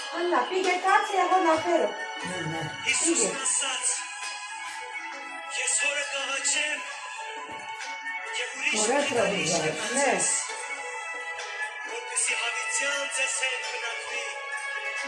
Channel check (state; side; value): identical; both; correlation 1.00